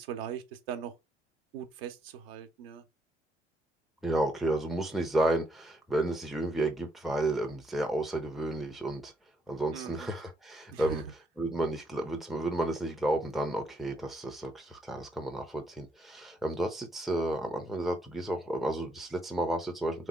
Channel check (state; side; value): normal; both; correlation 0.74